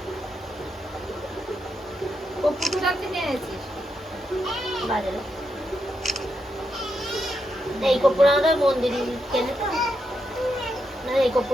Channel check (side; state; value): both; normal; correlation 0.83